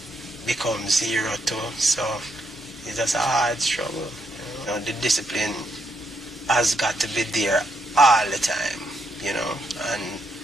become zero too. So it's just a hard struggle. You know, the discipline has got to be there all the time, you know, and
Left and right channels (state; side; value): normal; both; correlation 0.77